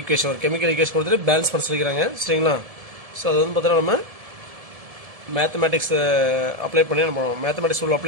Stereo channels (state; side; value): late; left; 1.7 ms